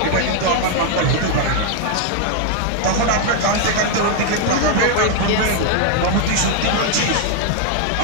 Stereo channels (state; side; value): different; both; correlation 0.00